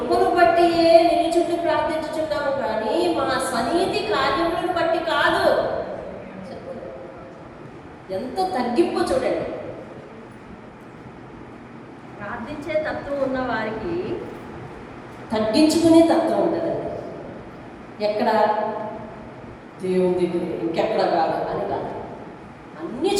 బట్టి నిలుచుండి ప్రార్థించుచున్నాము కానీ మా స్వనీతి కార్యములను బట్టి కాదు. ఎంత తగ్గింపు చూడండి. ప్రార్థించే తత్వం ఉన్న వారికి తగ్గించుకునే తత్వం ఉంటుందండి. ఎక్కడ? దేవుని దగ్గర, ఇంకెక్కడ కాదు అని కాదు, అన్ని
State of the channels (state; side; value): identical; both; correlation 1.00